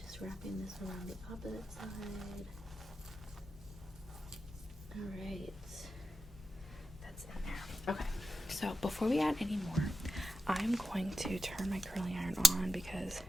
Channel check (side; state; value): both; normal; correlation 0.90